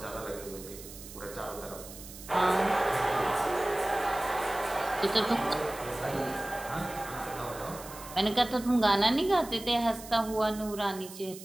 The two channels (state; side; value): noise; right; hiss, 15 dB below the sound